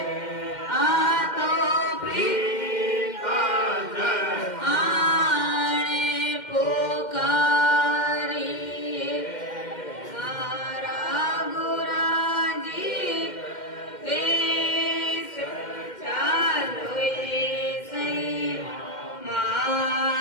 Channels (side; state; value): right; late; 2.1 ms